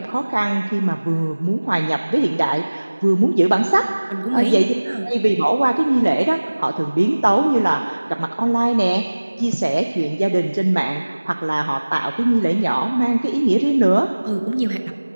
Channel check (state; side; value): inverted; both; correlation -1.00